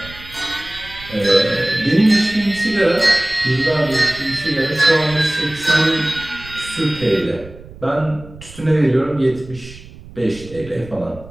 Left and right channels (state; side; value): noise; right; rumble, 18 dB below the sound